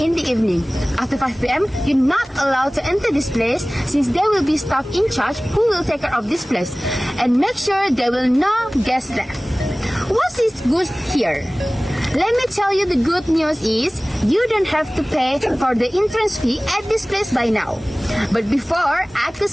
the evening. After 5 p.m., you're not allowed to enter this place, since there will be staff in charge who will take care of this place and make sure there will no guests left. What is good here? Let me tell you, the good news is you don't have to pay for the entrance fee at this place by now. But before, I could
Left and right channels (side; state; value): both; normal; correlation 0.98